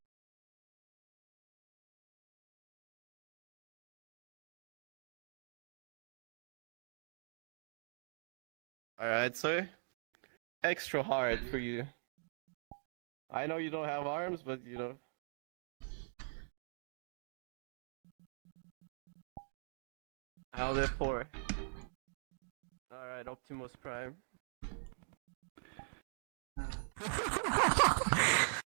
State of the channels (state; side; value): silent; left; digital silence